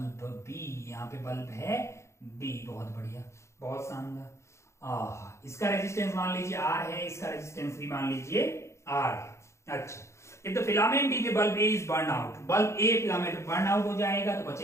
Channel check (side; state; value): right; late; 0.14 ms